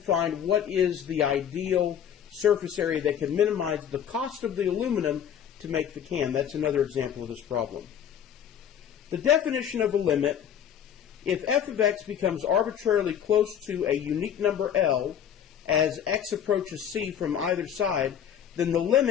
what is the ideal surface area that can minimize the cost of the aluminum to make the can. That's another example of this problem. The definition of a limit: if f of x becomes arbitrarily close to a unique number L as x approaches c from either side, then the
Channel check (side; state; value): right; quieter; 8.9 dB